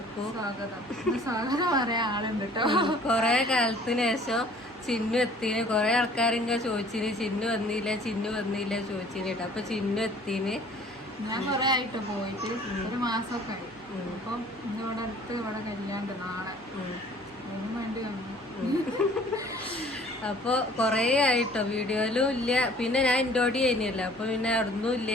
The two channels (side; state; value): right; noise; hum, 27 dB below the sound